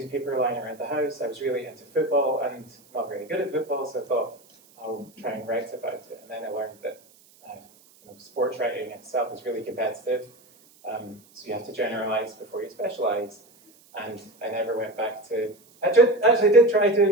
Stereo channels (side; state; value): right; noise; hiss, 28 dB below the sound